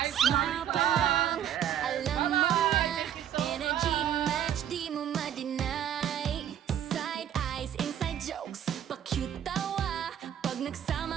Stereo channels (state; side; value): quieter; left; 10.1 dB